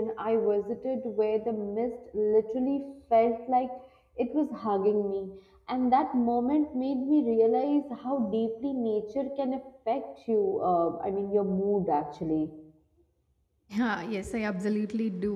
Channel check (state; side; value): identical; both; correlation 1.00